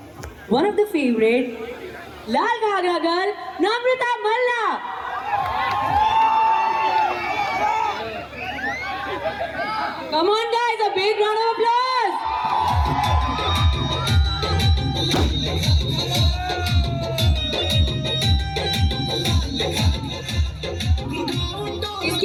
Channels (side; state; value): both; identical; correlation 1.00